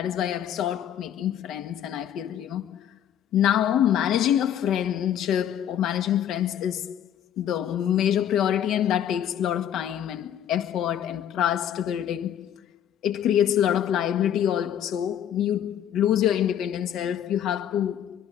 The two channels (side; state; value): right; quieter; 10.1 dB